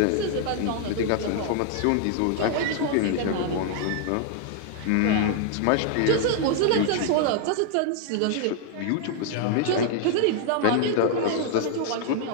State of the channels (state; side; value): different; both; correlation 0.00